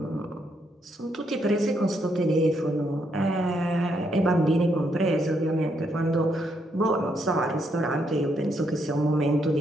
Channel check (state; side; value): normal; both; correlation 0.76